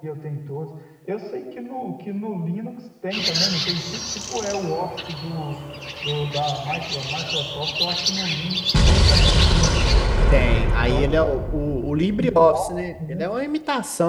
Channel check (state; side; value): identical; both; correlation 1.00